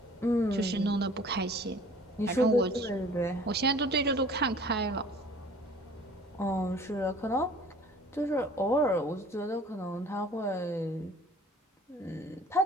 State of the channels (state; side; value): normal; both; correlation 0.49